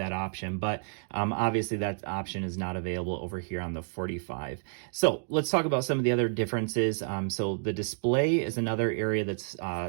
option, but obviously that option is not available over here on the 45. So let's talk about some of the other differences. So the display is another area that's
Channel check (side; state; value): left; silent; digital silence